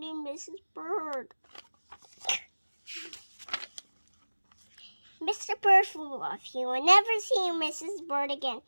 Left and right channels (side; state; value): both; inverted; correlation -1.00